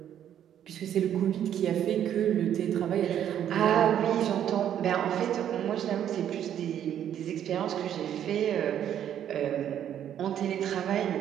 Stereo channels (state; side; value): quieter; left; 10.1 dB